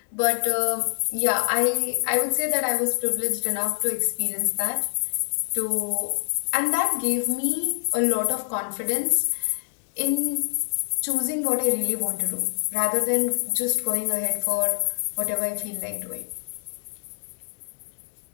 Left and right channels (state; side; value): silent; right; digital silence